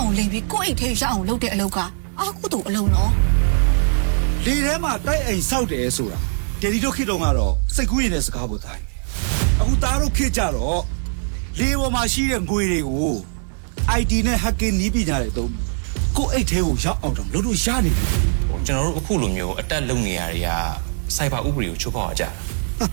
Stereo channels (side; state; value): left; silent; 65 dB below the other